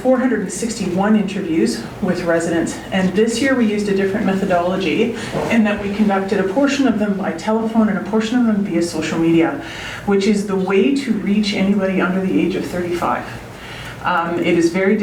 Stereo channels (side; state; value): both; identical; correlation 1.00